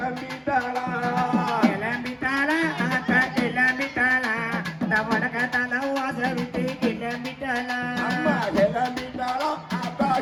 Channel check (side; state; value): both; identical; correlation 1.00